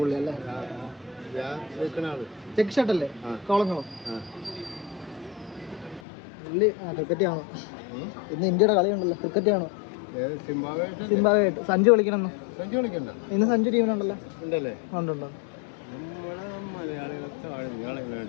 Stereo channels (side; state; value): right; drops out; at 6.0 s